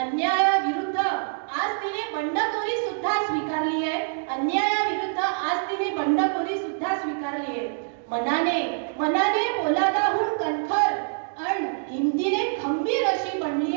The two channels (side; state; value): left; silent; digital silence